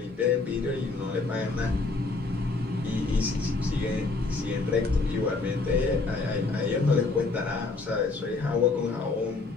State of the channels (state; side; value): quieter; right; 3.7 dB